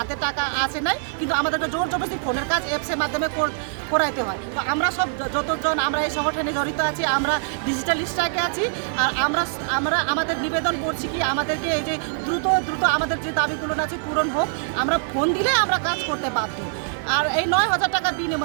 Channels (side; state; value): left; silent; digital silence